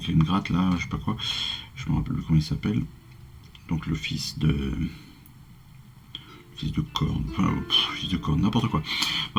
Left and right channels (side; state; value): both; identical; correlation 1.00